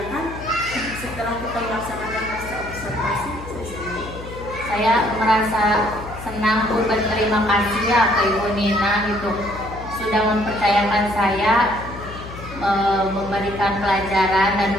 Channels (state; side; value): noise; left; hum, 13 dB below the sound